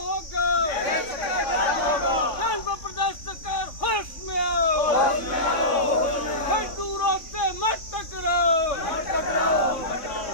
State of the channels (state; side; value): late; right; 3.6 ms